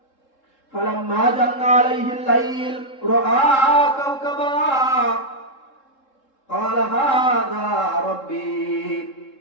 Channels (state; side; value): late; right; 3.7 ms